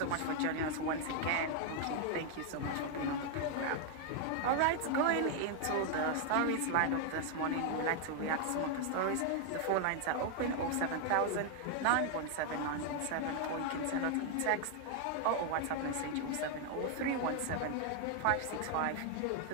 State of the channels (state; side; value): different; both; correlation 0.00